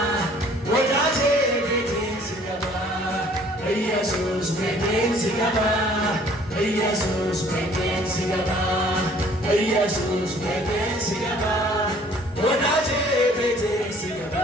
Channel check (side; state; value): both; normal; correlation 0.56